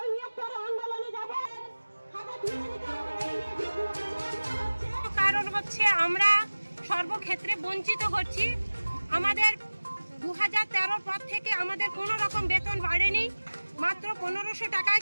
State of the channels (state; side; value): inverted; both; correlation -1.00